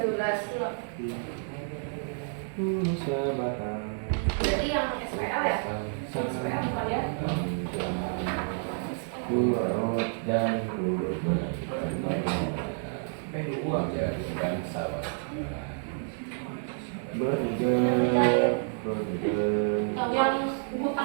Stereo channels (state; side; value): silent; left; 58 dB below the other